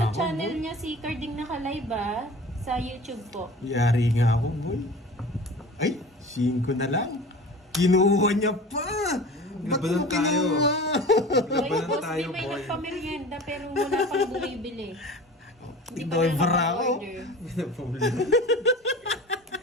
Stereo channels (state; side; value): normal; both; correlation 0.38